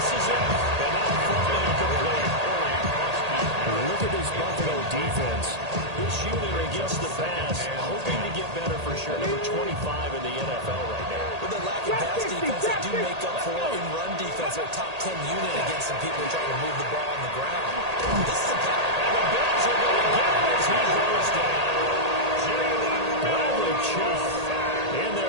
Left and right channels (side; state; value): left; late; 1.8 ms